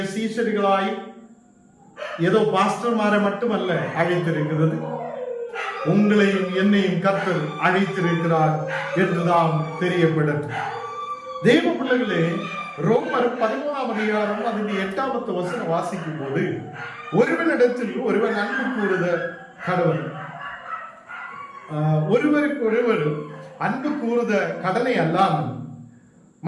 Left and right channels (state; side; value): identical; both; correlation 1.00